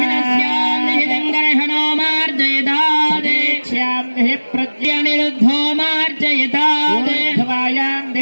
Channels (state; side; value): inverted; both; correlation -1.00